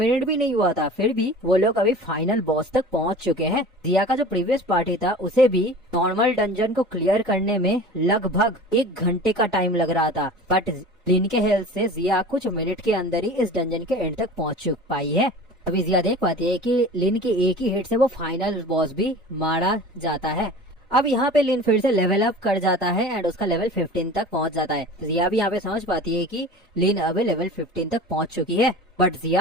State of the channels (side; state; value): both; normal; correlation 0.38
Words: भी नहीं हुआ था, फिर भी वो लोग अभी फाइनल बॉस तक पहुँच चुके हैं। जिया का जो प्रीवियस पार्टी था उसे भी नॉर्मल डंजन को क्लियर करने में लगभग 1 घंटे का टाइम लग रहा था, बट लिन के हेल्प से जिया कुछ मिनट के अंदर ही इस डंजन के एंड तक पहुँच पाई है। अभी जिया देख पाती है कि लिन के एक ही हिट से वो फाइनल बॉस भी मारा जाता है। अब यहाँ पे लिन फिर से लेवल अप कर जाता है एंड उसका लेवल 15 तक पहुँच जाता है। जिया भी यहाँ पे समझ पाती है कि लिन अब लेवल 15 तक पहुँच चुकी है, बट